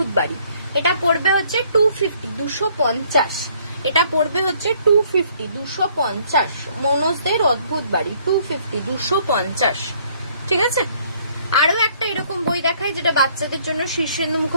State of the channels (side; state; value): both; inverted; correlation -0.63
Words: বাড়ি। এটা পড়বে হচ্ছে 250, 250। এটা পড়বে হচ্ছে 250, 250। মনোজদের অদ্ভুত বাড়ি 250, 250, ঠিক আছে। আরো একটা এরকম বই দেখায় যেটা বাচ্চাদের জন্য, শীর্ষেন্দু